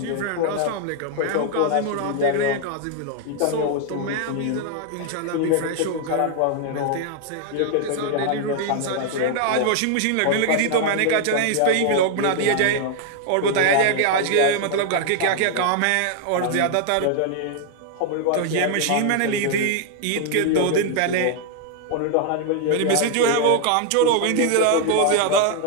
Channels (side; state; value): both; different; correlation 0.00